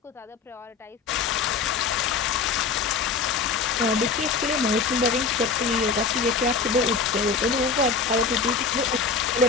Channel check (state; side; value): quieter; right; 5.1 dB